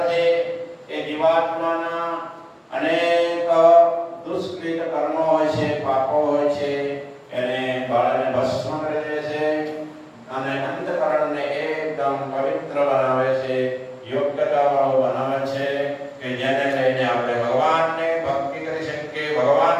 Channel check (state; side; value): identical; both; correlation 1.00